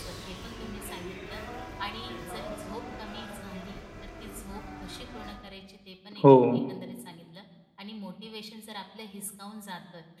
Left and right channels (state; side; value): identical; both; correlation 1.00